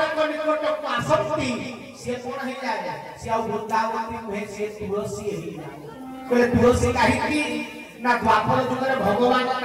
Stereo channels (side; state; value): both; identical; correlation 1.00